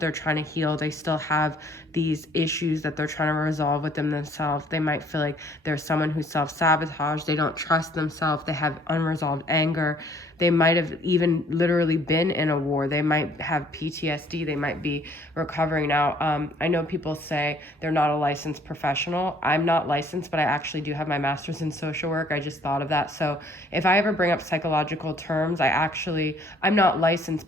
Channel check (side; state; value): both; normal; correlation 0.60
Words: trying to heal. They still have these issues that they're trying to resolve within themselves. They might feel like there's someone who's self-sabotaged. They don't trust themselves. They have unresolved anger. They might have even literally been in a war. They might have PTSD. They might be recovering now. I know people say they're not a licensed professional. I'm not licensed, but I actually do have my master's in social work. I just thought of that. So if I ever bring up psychological terms, I'm not licensed,